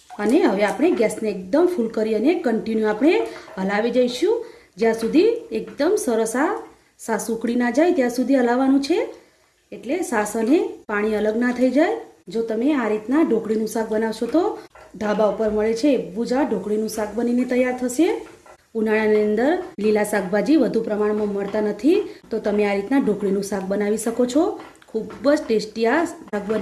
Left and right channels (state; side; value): identical; both; correlation 1.00